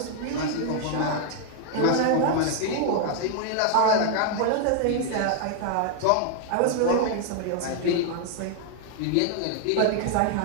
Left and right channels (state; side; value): different; both; correlation 0.00